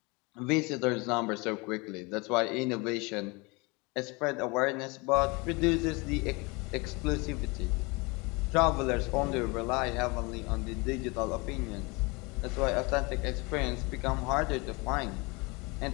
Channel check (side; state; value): right; quieter; 26.9 dB